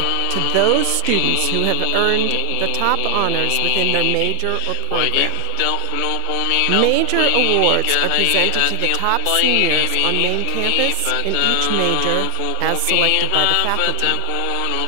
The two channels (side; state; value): both; different; correlation 0.00